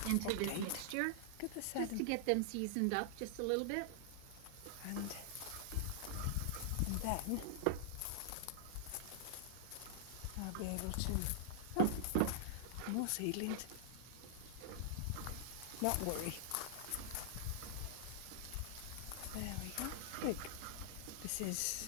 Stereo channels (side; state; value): both; different; correlation -0.01